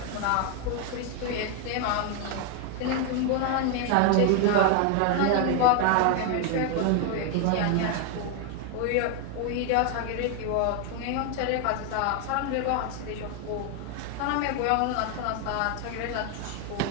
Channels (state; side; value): different; both; correlation 0.01